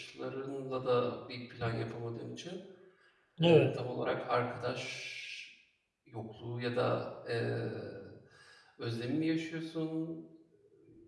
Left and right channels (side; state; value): both; identical; correlation 1.00